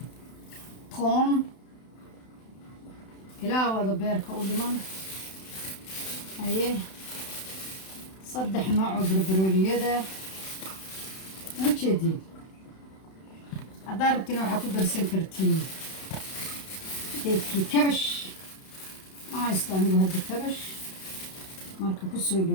toon ilaa wada beerka u dhiman aye 3 nooc oo barbarooniyada u jeediin haddaad rabtiin waxaa ku darsan kartiin geedkii kabash ma haysto anigu hadda kabash marka ku soo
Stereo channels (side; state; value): right; late; 32 ms